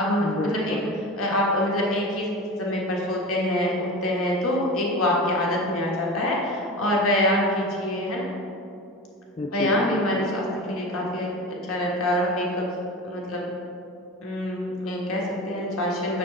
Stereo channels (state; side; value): normal; both; correlation 0.30